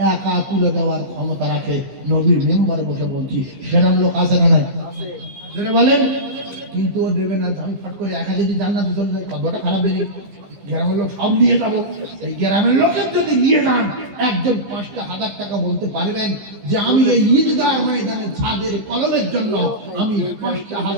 একা তুলে দেওয়ার ক্ষমতা রাখে। নবীর মেম্বারে বসে বলছি, সেরকম লোক আছে না নাই? জোরে বলেন। কিন্তু ও দেবে না। আমি ফট করে একা যদি জান্নাতে চলে যায়, কথাটা খারাপ বেরিয়ে, গ্রামের লোক সব নিয়ে যাবো। এই গ্রামের লোকের যদি নিয়ে যান, একজন 5টা 1000 টাকা বলতে পারবেন যে আমি এই ঈদগাহ ময়দানে ছাদের কলমের জন্য আমি 5টা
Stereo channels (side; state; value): left; late; 15 ms